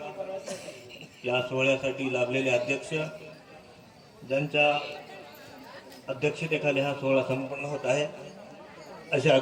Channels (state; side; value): identical; both; correlation 1.00